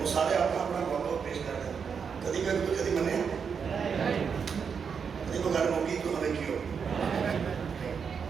وہ سارے اپنا موقع پیش کرتے ہیں کدی میں کدی منے کدی کو گھر موقعی تو ہمیں کیوں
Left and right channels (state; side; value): quieter; left; 6.4 dB